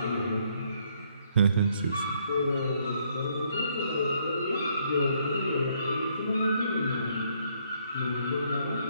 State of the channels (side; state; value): both; inverted; correlation -0.69